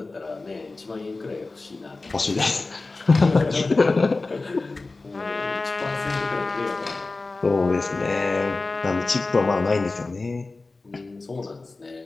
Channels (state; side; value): quieter; right; 3.5 dB